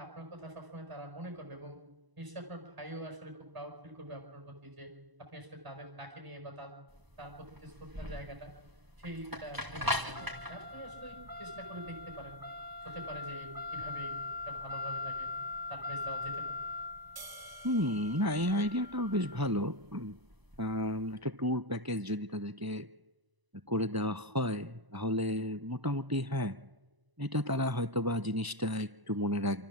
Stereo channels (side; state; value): left; late; 1.0 ms